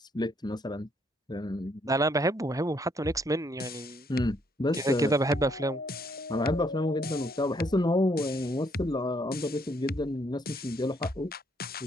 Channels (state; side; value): normal; both; correlation 0.70